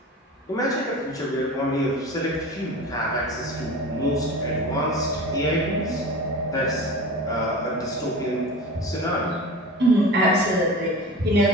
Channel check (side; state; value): both; normal; correlation 0.33